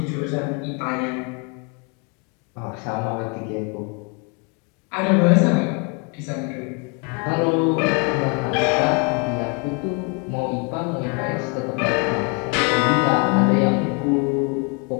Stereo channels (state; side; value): quieter; right; 33.8 dB